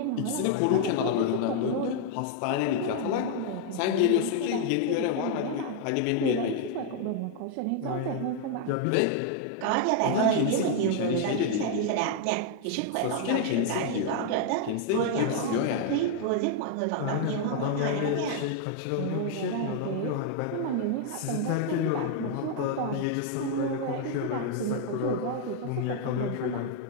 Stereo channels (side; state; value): both; different; correlation 0.00